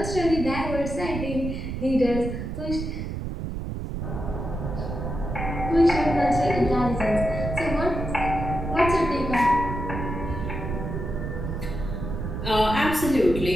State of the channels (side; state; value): right; noise; rumble, 5 dB below the sound